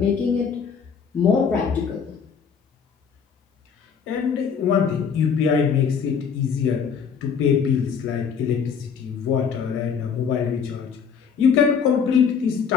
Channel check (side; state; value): right; quieter; 6.6 dB